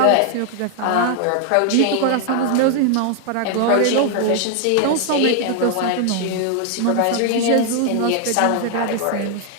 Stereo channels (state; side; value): different; both; correlation 0.00